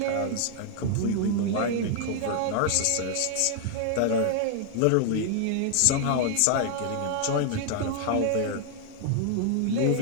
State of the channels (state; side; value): different; both; correlation 0.00